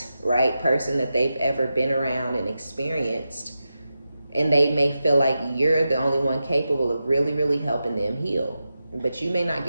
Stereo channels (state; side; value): inverted; both; correlation -0.90